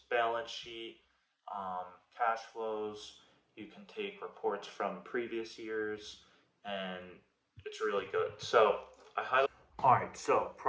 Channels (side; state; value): both; identical; correlation 1.00